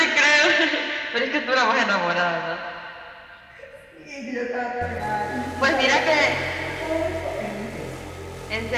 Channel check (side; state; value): both; identical; correlation 1.00